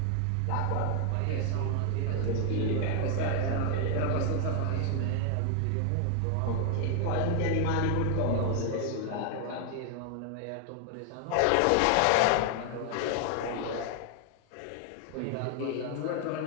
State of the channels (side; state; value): both; different; correlation 0.00